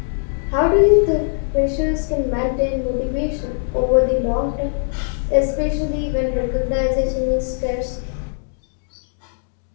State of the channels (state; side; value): silent; right; digital silence